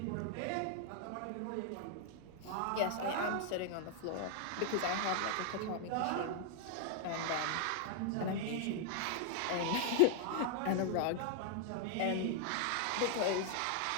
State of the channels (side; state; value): both; different; correlation 0.00